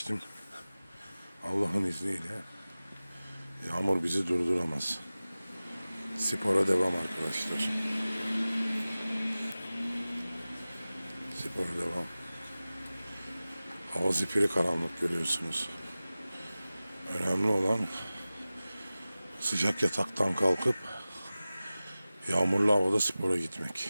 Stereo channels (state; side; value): inverted; both; correlation -0.97